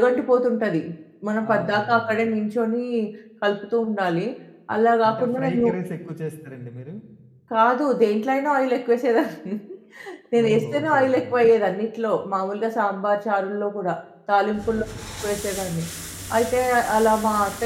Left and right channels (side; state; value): both; identical; correlation 1.00